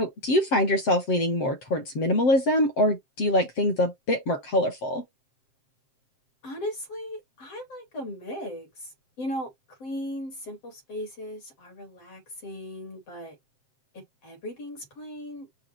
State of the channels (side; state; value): right; late; 7.7 ms